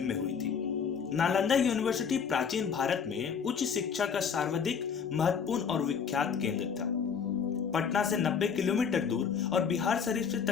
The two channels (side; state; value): right; quieter; 6.6 dB